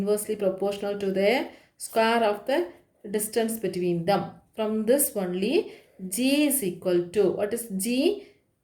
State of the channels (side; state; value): both; identical; correlation 1.00